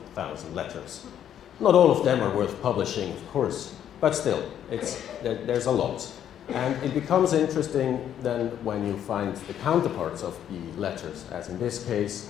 letters. Not all of them are worth publishing, of course, but still, there's a lot. And it becomes interesting then when you find the counterparts of the letters, as in this case,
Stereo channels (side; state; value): right; quieter; 10.1 dB